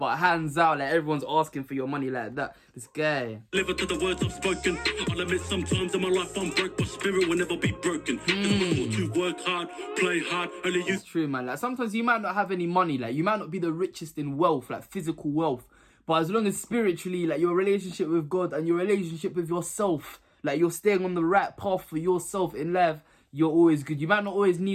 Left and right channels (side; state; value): both; identical; correlation 1.00